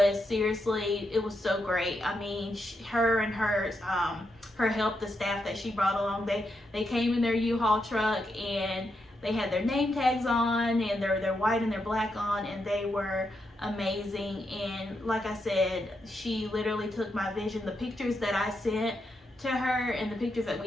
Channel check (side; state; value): both; normal; correlation 0.83